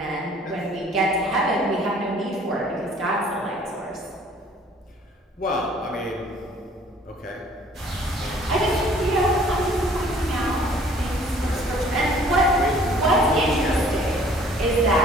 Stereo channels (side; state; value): both; normal; correlation 0.55